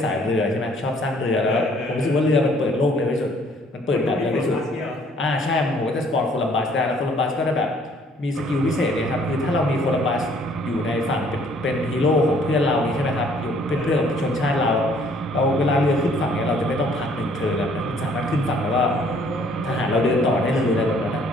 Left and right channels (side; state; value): both; normal; correlation 0.60